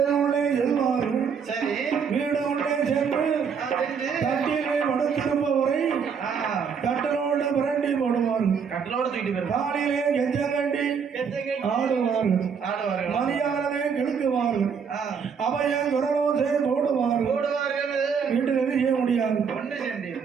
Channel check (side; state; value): left; quieter; 6.5 dB